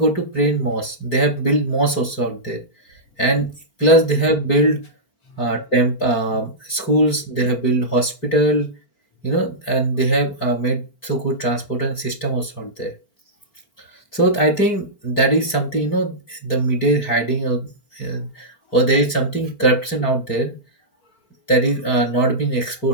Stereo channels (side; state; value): right; late; 4.4 ms